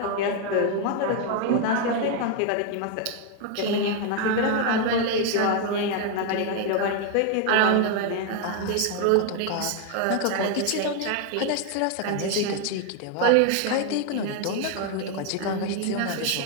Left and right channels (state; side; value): different; both; correlation 0.01